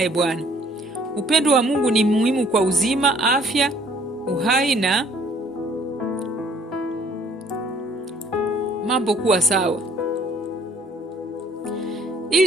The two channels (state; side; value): normal; both; correlation 0.60